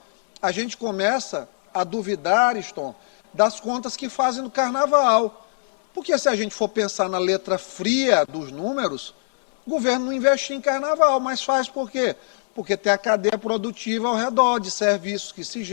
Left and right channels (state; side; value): silent; right; 64 dB below the other